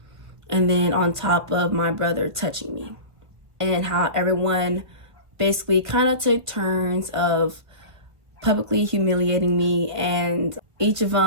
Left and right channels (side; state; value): left; late; 1.4 ms